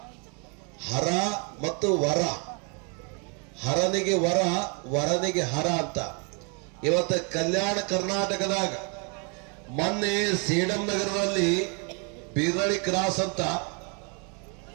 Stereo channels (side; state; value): left; quieter; 35.2 dB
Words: ಹರ ಮತ್ತು ವರ, ಹರನಿಗೆ ವರ, ವರನಿಗೆ ಹರ ಅಂತ. ಇವತ್ತು ಕಲ್ಯಾಣ ಕರ್ನಾಟಕದಾಗ ಮೊನ್ನೆ ಸೇಡಂ ನಗರದಲ್ಲಿ ಬೀರಳಿ ಕ್ರಾಸ್ ಅಂತ,